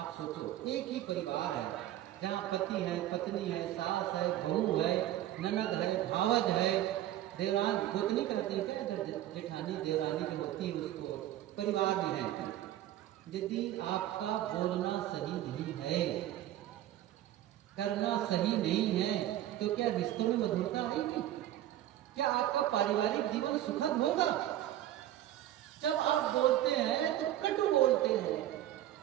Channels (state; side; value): quieter; left; 13.2 dB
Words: सोचो, एक ही परिवार है जहाँ पति है, पत्नी है, सास है, बहू है, ननद है, भावज है, देवरान गोतनी कहती है, अगर जेठानी देवरानी जो होती है उसको परिवार में है। यदि आपका बोलना सही नहीं है, करना सही नहीं है, तो क्या रिश्तों में मधुरता आएगी? क्या आपका पारिवारिक जीवन सुखद होगा? जब आप बोलते हैं तो कटु बोलते हैं,